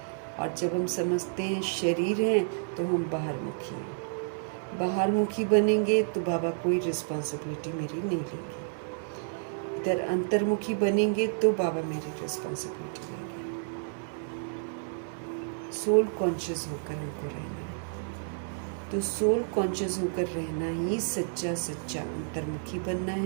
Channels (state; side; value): silent; left; digital silence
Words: और जब हम समझते हैं शरीर हैं तो हम बाहरमुखी हैं। बाहरमुखी बनेंगे तो बाबा कोई रिस्पॉन्सिबिलिटी मेरी नहीं लेंगे। इधर अंतर्मुखी बनेंगे तो बाबा मेरी रिस्पॉन्सिबिलिटी लेंगे। सोल कॉन्शियस होकर हमको रहना है। तो सोल कॉन्शियस होकर रहना ही सच्चा सच्चा अंतर्मुखी बनना